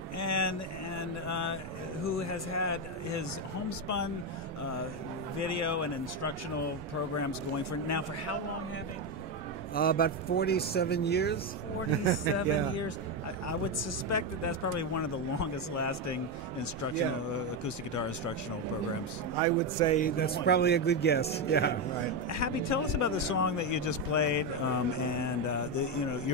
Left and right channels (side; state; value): both; normal; correlation 0.09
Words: and who has had his homespun video and instructional programs going for how long, Happy? About 47 years. 47 years. I would suspect that that's probably one of the longest lasting instructional acoustic guitar instructional programs. I would say that's probably a good guess. Yeah, right. Happy, tell us about the song that you just played and